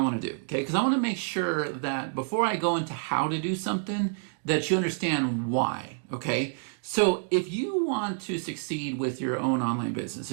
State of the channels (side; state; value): left; silent; 59 dB below the other